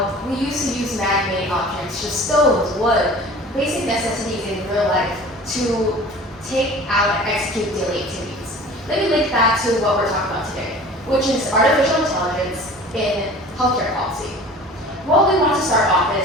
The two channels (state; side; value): normal; both; correlation 0.43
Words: we used to use man-made objects, just stones, wood, basic necessities in real life to take out and execute daily activities. Let me link that to what we're talking about today, which is artificial intelligence in healthcare policy. What we want to start off